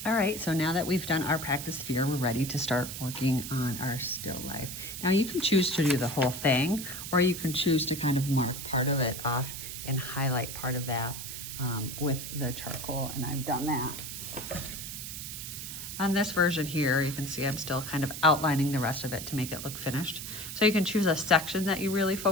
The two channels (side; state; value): right; noise; hiss, 8 dB below the sound